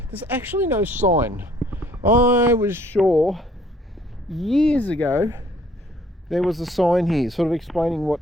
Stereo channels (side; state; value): both; normal; correlation 0.60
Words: There's actually no sign. I was sure years ago there was a sign here sort of explaining what